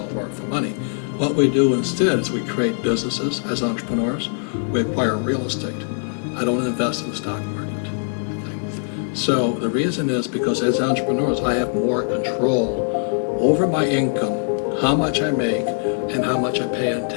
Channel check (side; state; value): right; silent; 64 dB below the other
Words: work for money. What we do instead is we create businesses as entrepreneurs. We acquire real estate. I don't invest in the stock market. Okay? So the reason is because as entrepreneurs, I have more control over my income, how much I make, and how much I pay in